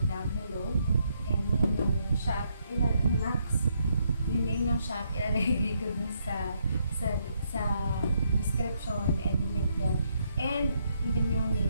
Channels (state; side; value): inverted; both; correlation -0.75